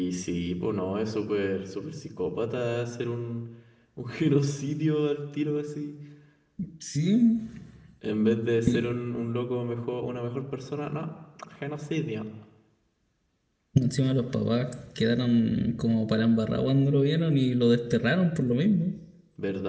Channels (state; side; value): identical; both; correlation 1.00